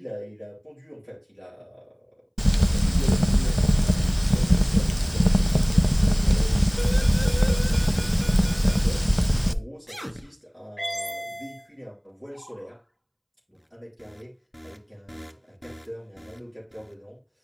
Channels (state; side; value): identical; both; correlation 1.00